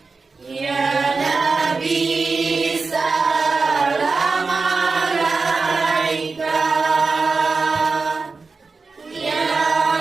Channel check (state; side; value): quieter; left; 4.3 dB